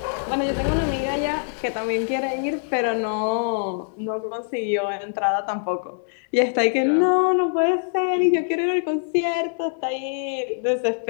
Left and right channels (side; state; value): right; silent; digital silence